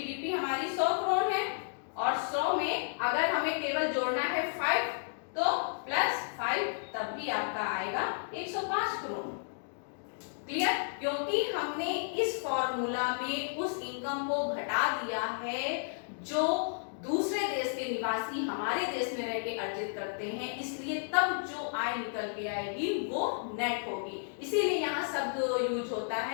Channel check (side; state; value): right; silent; digital silence